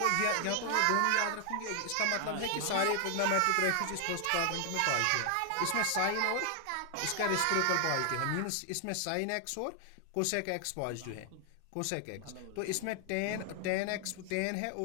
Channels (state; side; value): different; both; correlation 0.00